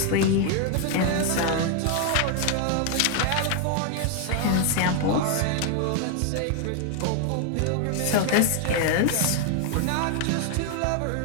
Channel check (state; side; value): different; both; correlation 0.00